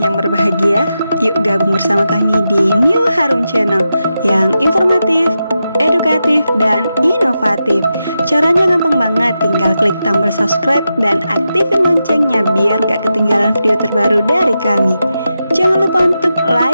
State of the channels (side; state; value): both; inverted; correlation -0.88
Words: berbahagia, yuk gabung bersama kami di New Harum Channel yang informatif, edukatif, dan inovatif. Caranya gampang banget, tinggal klik tombol subscribe dan aktifin loncengnya biar gak ketinggalan video terbaru dari kami. Jangan lupa untuk